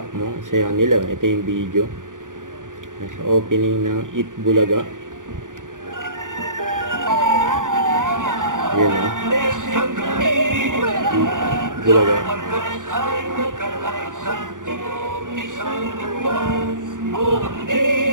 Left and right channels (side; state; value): left; late; 0.88 ms